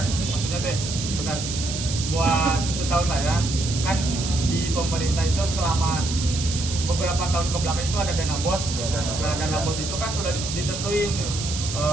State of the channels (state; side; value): noise; right; hiss, 6 dB below the sound